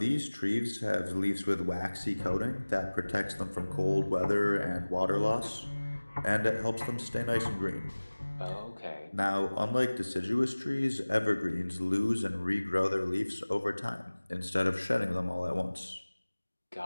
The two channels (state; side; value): inverted; both; correlation -1.00